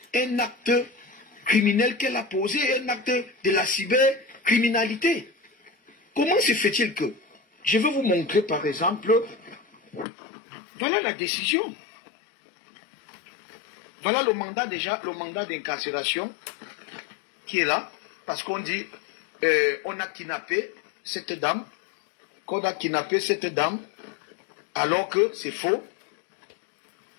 un acte criminel qu'elle a posé, un acte de la cybercriminalité. Comment se fait-il que, je vais vous montrer par exemple, voilà la décision. Voilà le mandat déjà, le mandat d'incarcération qui est là, parce qu'on dit, on a kidnappé cette dame, alors que c'est faux.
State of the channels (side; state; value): right; drops out; at 10.1 s